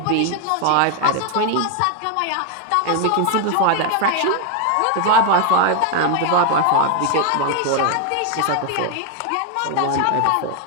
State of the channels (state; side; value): different; both; correlation 0.01